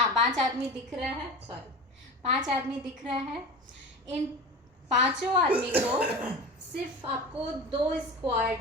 5 आदमी दिख रहा है, सॉरी 5 आदमी दिख रहा है। इन 5 आदमी को सिर्फ आपको 2 स्क्वायर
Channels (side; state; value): both; normal; correlation 0.30